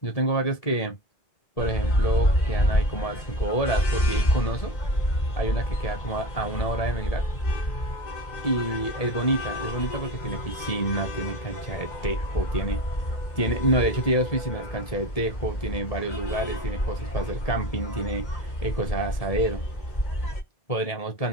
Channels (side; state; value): right; late; 1.8 ms